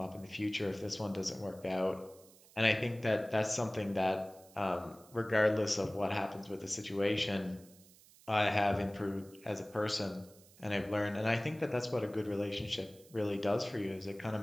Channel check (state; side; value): noise; right; hiss, 25 dB below the sound